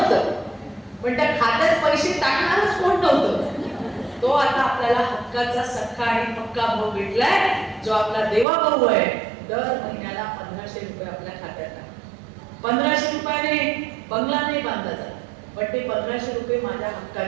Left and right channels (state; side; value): drops out; left; at 8.5 s